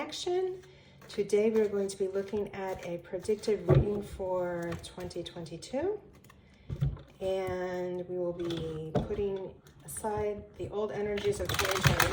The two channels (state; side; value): identical; both; correlation 1.00